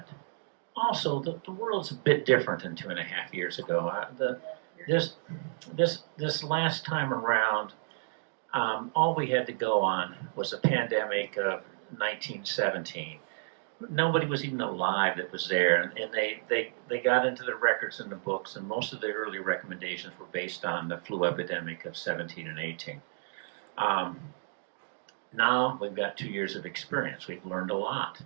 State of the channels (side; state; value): left; silent; digital silence